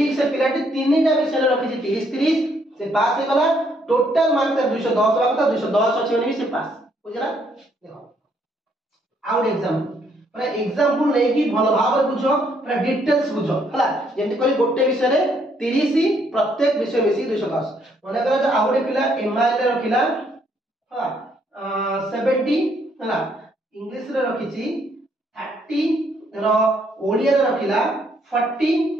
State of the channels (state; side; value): normal; both; correlation 0.70